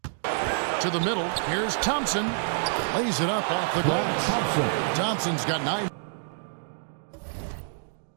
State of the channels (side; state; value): left; silent; digital silence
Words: To the middle. Here's Thompson. Lays it up off the glass. Thompson's got 9.